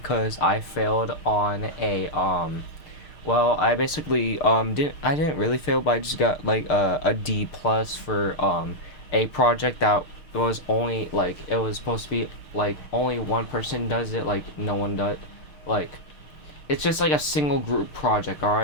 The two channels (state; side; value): late; right; 6.6 ms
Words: I failed on well, I basically didn't really fail, but I just got like a D plus for a project that was only like it was supposed to be like only one person does it, like no one does, like it's just like a single group project. All